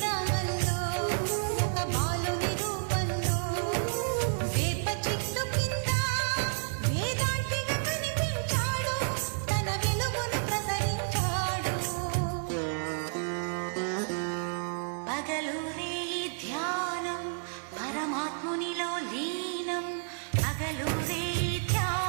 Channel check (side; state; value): left; silent; 57 dB below the other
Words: ఒక బాలుని రూపంలో వేప చెట్టు కింద వేదాంతిగా కనిపించాడు, తన వెలుగును ప్రసరించాడు. పగలూరే ధ్యానం పరమాత్మునిలో లీనం, పగలూరే